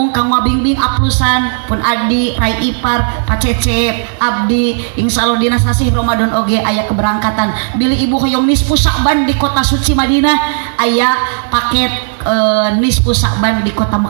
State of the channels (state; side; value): silent; left; digital silence